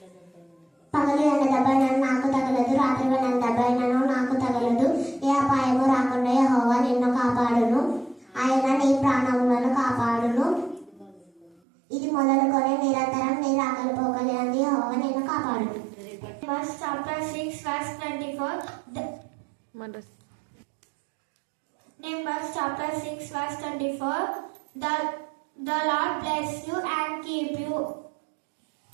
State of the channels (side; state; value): left; drops out; at 11.6 s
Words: పగలు ఎండ దెబ్బైనను నాకు తగలదు, రాత్రి ఎండ దెబ్బైనను నాకు తగలదు. ఏ అపాయము రాకుండా యెహోవా నిన్ను కాపాడును. ఆయన నీ ప్రాణములను కాపాడును. ఇది మొదలుకొని నిరంతరం నీ రాకలి పోకలేని యెహోవా నిన్ను కాపాడును. Numbers chapter 6 verse 24. Numbers chapter 6 verse 24. The Lord bless you and keep you.